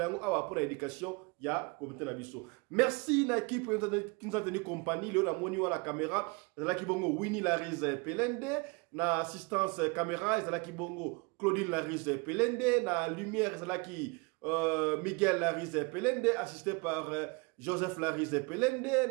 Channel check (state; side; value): quieter; left; 29.3 dB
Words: yango awa pour éducation ya comité na biso. Merci na équipe qui nous a tenu compagnie leo na moni wa la caméra ezalaki bongo Winnie Larise Pelende na assistance caméra ezalaki bongo Claudine Larise Pelende na lumière ezalaki Miguel Larise Pelende assisté par Joseph Larise